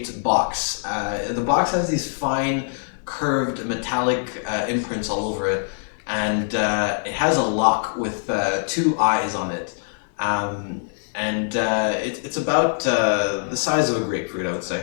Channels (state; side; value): silent; right; digital silence